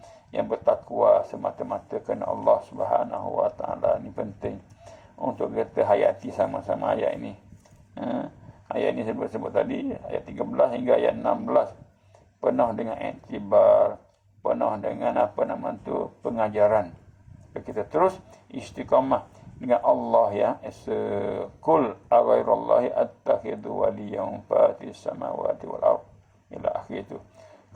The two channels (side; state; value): both; identical; correlation 1.00